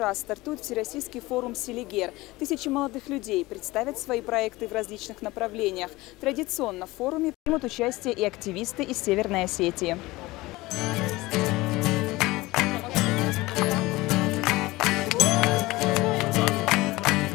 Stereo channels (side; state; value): right; quieter; 20.1 dB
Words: стартует Всероссийский форум «Селигер». Тысячи молодых людей представят свои проекты в различных направлениях. Традиционно в форуме примут участие и активисты из Северной Осетии.